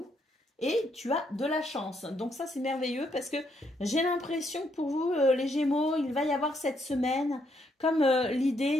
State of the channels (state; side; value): normal; both; correlation 0.74